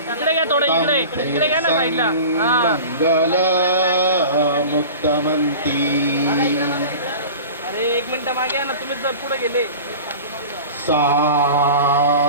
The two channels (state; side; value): inverted; both; correlation -0.37